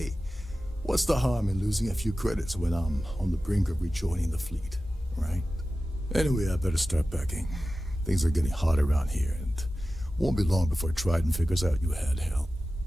what's the harm in losing a few credits when I'm on the brink of rejoining the fleet, right? Anyway, I better start packing. Things are getting hot around here, and won't be long before Trident figures out you had help.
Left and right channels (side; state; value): both; normal; correlation 0.94